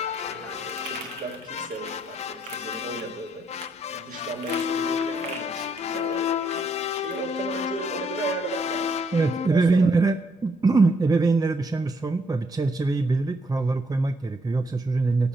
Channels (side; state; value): both; normal; correlation 0.73